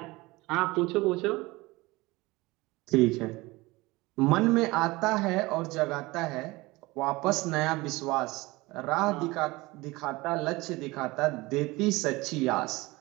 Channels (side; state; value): left; quieter; 21.7 dB